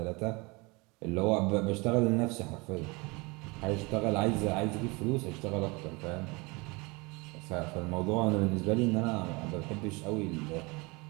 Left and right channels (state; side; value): quieter; left; 26.4 dB